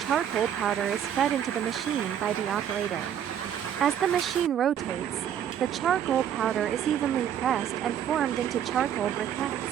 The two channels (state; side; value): quieter; left; 9.6 dB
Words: powder is fed into the machine by the operator. As the machine rotates, the charcoal powder is evenly pressed and formed into charcoal